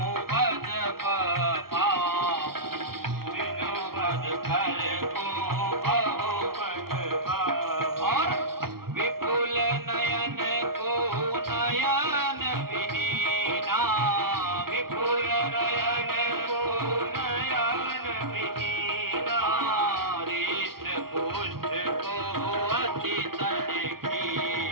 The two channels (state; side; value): late; left; 0.94 ms